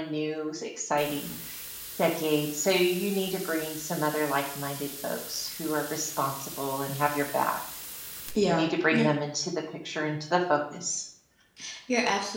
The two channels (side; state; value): both; identical; correlation 1.00